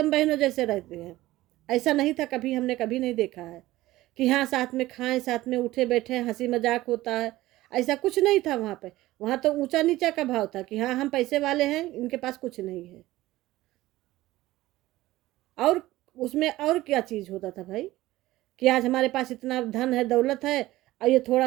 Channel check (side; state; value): left; quieter; 16.9 dB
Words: बहनों जैसे रहते हैं। ऐसा नहीं था कभी, हमने कभी नहीं देखा है कि हाँ साथ में खाएं, साथ में उठे बैठे, हंसी मजाक होता है। ऐसा कुछ नहीं था वहाँ पे। वहाँ तो ऊंचा नीचा का भाव था कि हाँ हम पैसे वाले हैं, इनके पास कुछ नहीं है। और उसमें और क्या चीज होता था भाई, कि आज हमारे पास इतना धन है, दौलत है, और ये